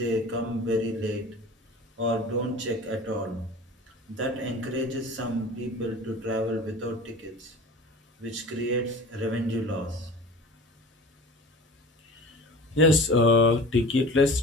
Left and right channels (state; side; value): normal; both; correlation 0.38